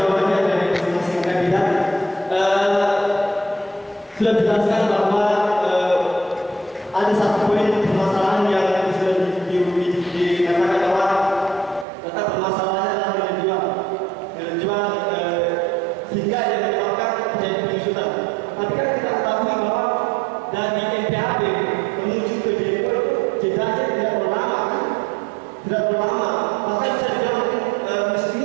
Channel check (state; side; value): drops out; left; at 11.9 s